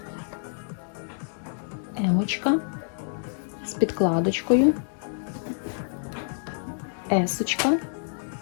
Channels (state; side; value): silent; right; digital silence